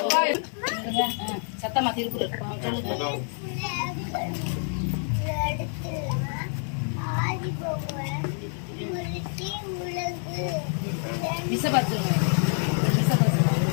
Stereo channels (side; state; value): right; silent; 57 dB below the other